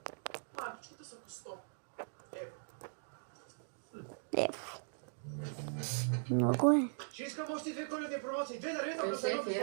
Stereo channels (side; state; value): left; silent; digital silence